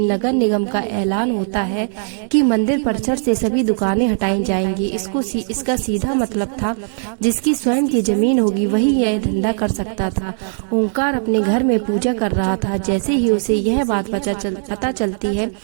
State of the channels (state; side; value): silent; left; digital silence